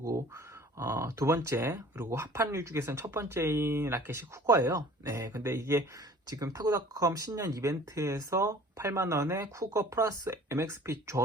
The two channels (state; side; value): normal; both; correlation 0.49